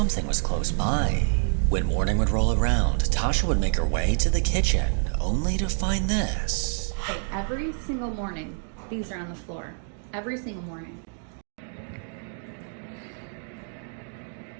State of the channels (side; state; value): left; silent; 60 dB below the other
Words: was close by. When morning would roll around, Tasha would make her way to the kitchen, only to find this. Okay, every single morning, these are on the floor. Every single morning.